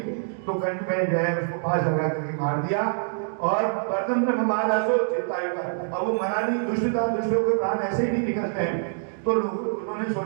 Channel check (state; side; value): silent; left; digital silence